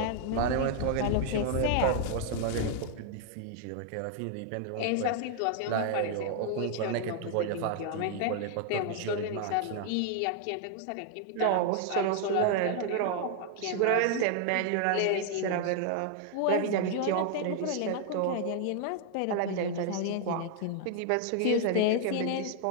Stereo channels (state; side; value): different; both; correlation 0.00